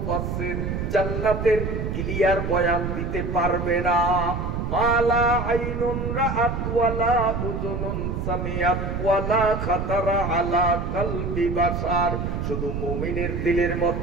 জান্নাতের ক্লিয়ার বয়ান দিতে পারবে না। মালা আইনুন রাআত ওয়ালা উযুনুন সামিআত ওয়ালা খাতারা আলা কলবি বাশার। শুধু মুমিনের দিলের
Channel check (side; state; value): right; noise; rumble, 3 dB below the sound